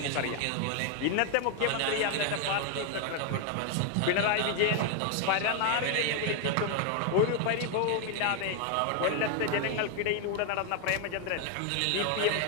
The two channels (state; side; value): different; both; correlation 0.01